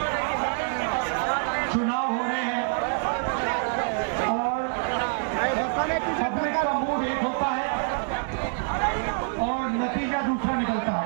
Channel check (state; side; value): silent; left; 61 dB below the other